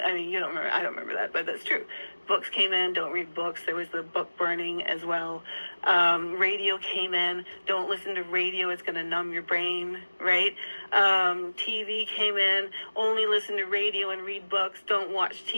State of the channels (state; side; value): inverted; both; correlation -1.00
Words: mean, you don't remember. I don't remember that, but that's true. Books came in, don't read books. There was the book burning as well. Radio came in, don't listen to radio, it's going to numb your brain, right? TV came in, only listen to radio and read books, don't watch